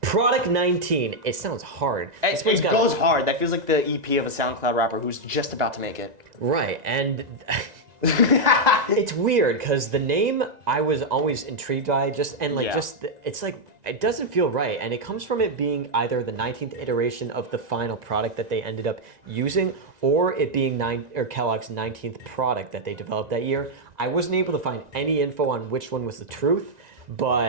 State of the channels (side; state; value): left; late; 1.9 ms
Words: Product 19. It sounds hard. This one's It got- goes hard. That feels like the EP of a SoundCloud rapper who's just about to make it. Right, and it's weird because the name I was always intrigued by, it's like it doesn't feel right, and it comes from it being either the 19th iteration of the final product that they ended up using, or it being Kellogg's 19th product that they developed that year. I wasn't able to find any info on which one was the truth,